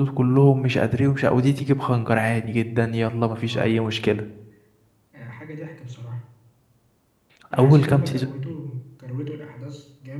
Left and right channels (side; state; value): both; identical; correlation 1.00